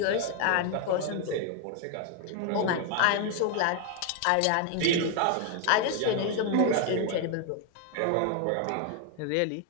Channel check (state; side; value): different; both; correlation 0.00